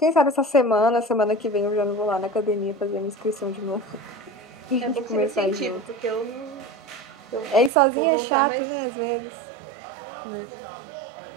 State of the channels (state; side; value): drops out; left; at 7.7 s